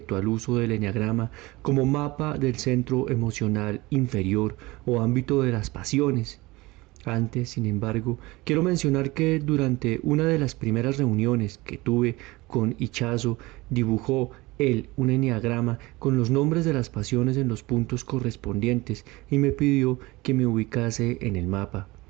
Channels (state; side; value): quieter; left; 21.6 dB